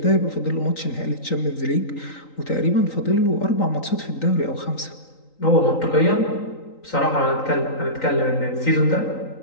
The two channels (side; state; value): right; late; 3.9 ms